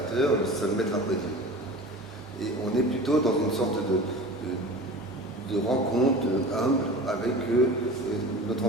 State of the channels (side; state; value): both; normal; correlation 0.36